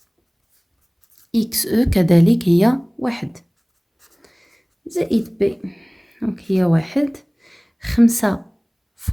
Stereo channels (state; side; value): identical; both; correlation 1.00